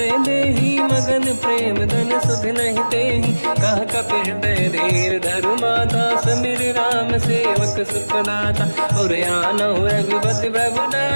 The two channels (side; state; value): both; inverted; correlation -1.00